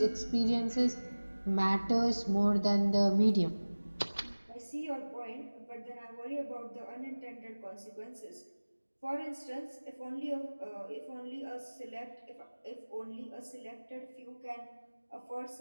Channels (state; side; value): inverted; both; correlation -1.00